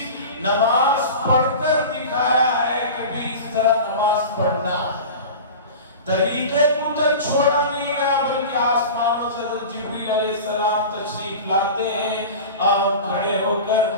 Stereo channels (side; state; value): both; inverted; correlation -0.33